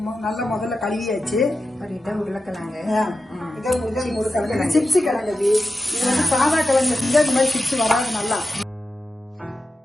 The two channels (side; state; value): both; normal; correlation 0.91